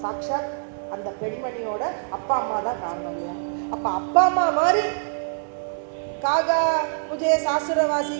சாக்ஷாத் அந்த பெண்மணியோட அப்பா அம்மா தான் காரணம் இல்லையா? அப்ப அப்பா அம்மா மாதிரி காகா முஜே சாசுரவாசி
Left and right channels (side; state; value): left; silent; 62 dB below the other